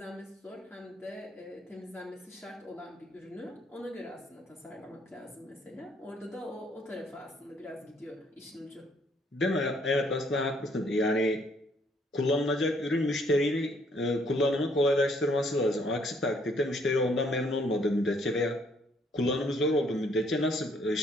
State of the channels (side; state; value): both; normal; correlation 0.66